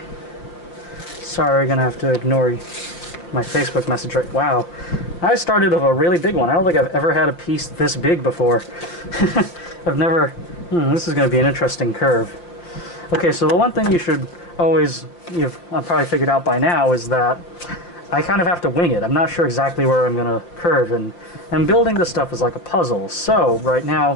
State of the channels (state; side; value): late; right; 5.7 ms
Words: Sorry, gonna have to ignore my Facebook message right. Wow. I started with a really big one. I don't think I've ever had a piece this big before. I've never... this is gonna be an interesting curve. Okay, so the one thing you should always... I've probably figured out by now is that I kind of have to wing it. I'm not sure exactly where I'm gonna curve, and building this stuff is like a puzzle. So, right now,